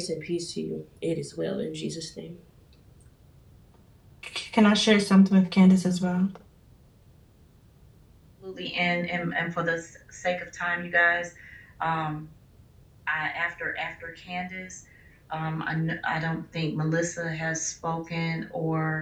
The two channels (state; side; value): identical; both; correlation 1.00